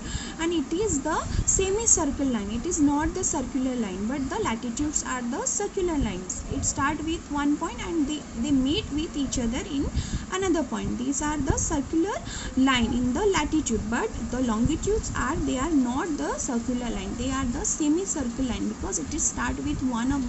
and it is the semicircle line. It is not the circular line, but the latitudes are the circular lines. It start with one point and they meet with each other in another point. These are the circular line in the latitude, but the longitudes are, they are not the circular line, they are the semicircle line, because it is start with one of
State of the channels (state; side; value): identical; both; correlation 1.00